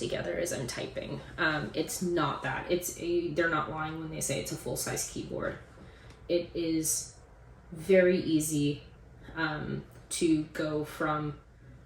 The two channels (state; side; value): identical; both; correlation 1.00